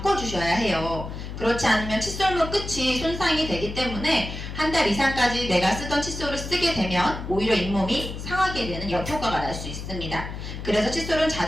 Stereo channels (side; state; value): left; noise; hum, 8 dB below the sound